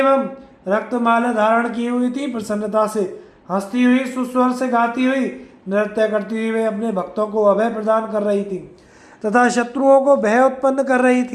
रक्त माला धारण की हुई थी। प्रसन्नता से हंसती हुई, सुस्वर से गाती हुई, नृत्य करती हुई वे अपने भक्तों को अभय प्रदान कर रही थी तथा शत्रुओं को भय उत्पन्न कर रही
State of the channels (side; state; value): both; identical; correlation 1.00